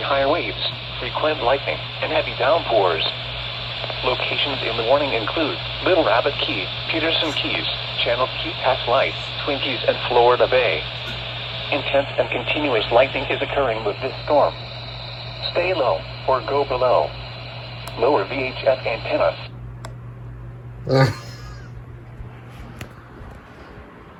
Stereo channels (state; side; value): identical; both; correlation 1.00